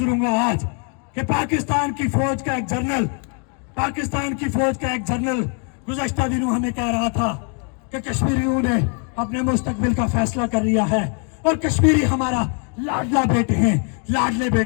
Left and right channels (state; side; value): quieter; right; 39.6 dB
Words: आज कि पाकिस्तान की फौज का एक जनरल गुज़श्ता दिनों हमें कह रहा था कि कश्मीरियों ने अपने मुस्तकबिल का फैसला कर लिया है और कश्मीरी हमारा लाडले